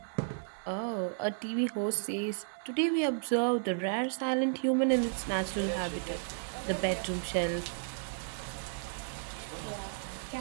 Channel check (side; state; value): left; silent; digital silence